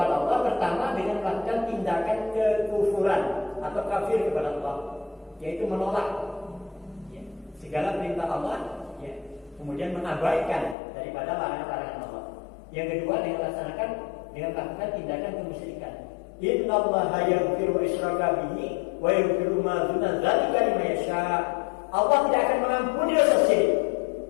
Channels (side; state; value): right; drops out; at 10.8 s